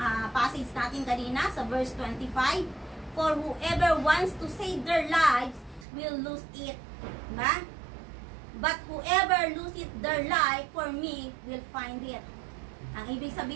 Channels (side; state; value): left; drops out; at 5.9 s